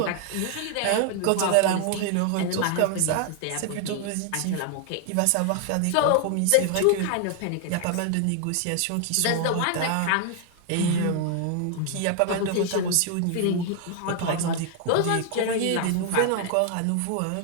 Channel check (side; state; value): both; different; correlation 0.00